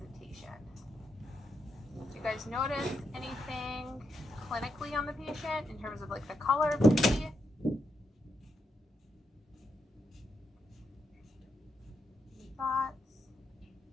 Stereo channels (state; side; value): normal; both; correlation 0.82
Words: Do you guys notice anything clinically on the patient in terms of like the color of the teeth? Any thoughts?